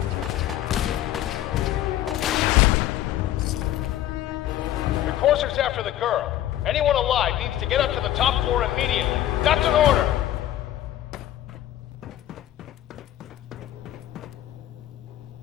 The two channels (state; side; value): quieter; right; 12.8 dB